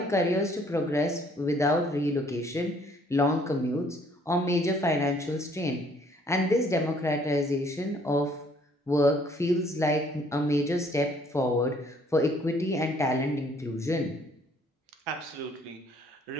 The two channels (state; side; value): normal; both; correlation 0.61